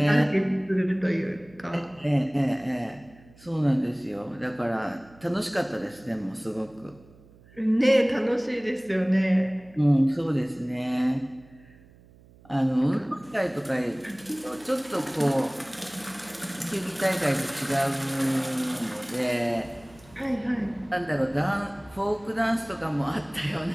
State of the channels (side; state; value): right; noise; hum, 25 dB below the sound